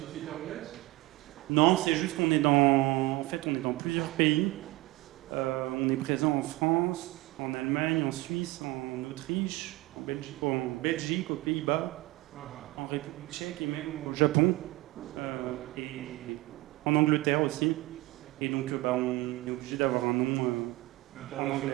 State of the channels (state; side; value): quieter; left; 20.0 dB